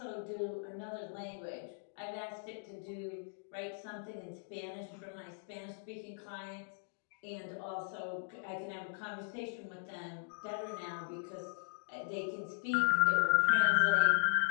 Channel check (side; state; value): right; silent; digital silence